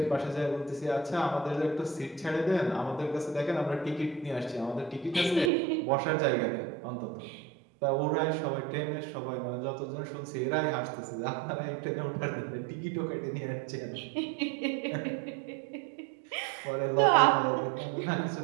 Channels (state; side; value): drops out; left; at 5.5 s